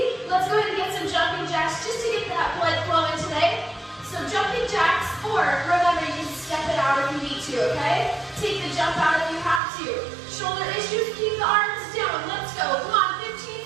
Let's go ahead and get some jumping jacks just to get that blood flowing today. So jumping jacks, or remember, you can step it out if you need to, okay? Take the jump out if you have to. Shoulder issues, keep the arms down. Let's go. Come on, 15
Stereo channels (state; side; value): drops out; left; at 9.6 s